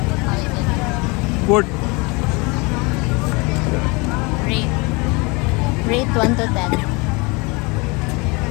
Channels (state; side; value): quieter; right; 27.7 dB